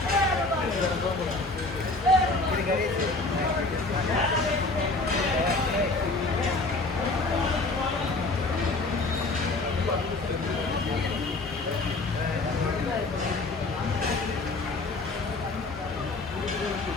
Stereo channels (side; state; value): right; quieter; 3.3 dB